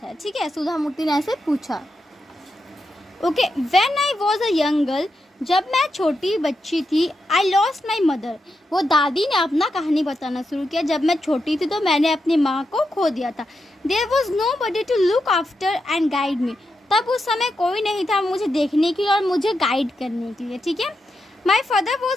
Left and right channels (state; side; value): normal; both; correlation 0.86